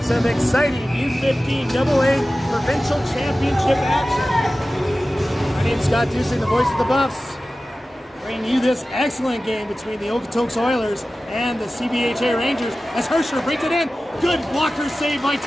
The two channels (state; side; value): normal; both; correlation 0.95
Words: some exciting U15 AA Provincial Championship action. My name's Scott Dusing, the voice of the Buffs, bringing you this excellent game between the Okotoks Oilers and the CBHA Rangers as Hersher brings it in. Good blocker save by